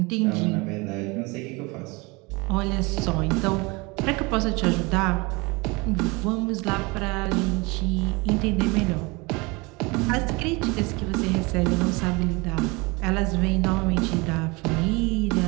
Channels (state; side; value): quieter; left; 26.1 dB